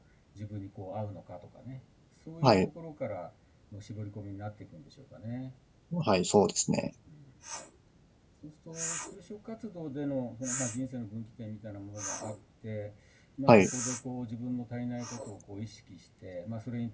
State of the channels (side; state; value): both; identical; correlation 1.00